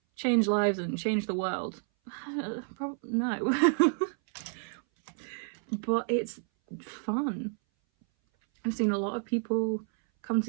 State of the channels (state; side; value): silent; left; 58 dB below the other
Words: change lives and change the world? No. But it's fun. I've seen a lot of people come